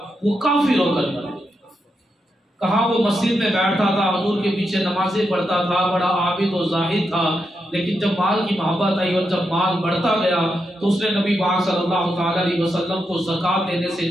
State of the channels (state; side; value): normal; both; correlation 0.84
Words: وہ کافر ہو کر مرا۔ کہاں وہ مسجد میں بیٹھتا تھا، حضور کے پیچھے نمازیں پڑھتا تھا، بڑا عابد و زاہد تھا، لیکن جب مال کی محبت آئی اور جب مال بڑھتا گیا تو اس نے نبی پاک صلی اللہ تعالی علیہ وسلم کو زکوٰۃ دینے سے